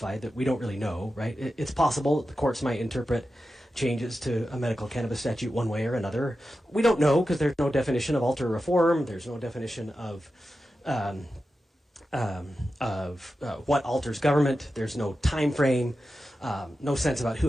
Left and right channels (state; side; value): normal; both; correlation 0.92